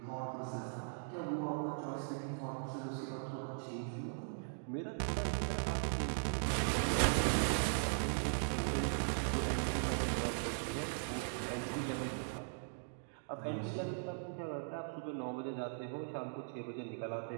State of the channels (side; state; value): left; silent; digital silence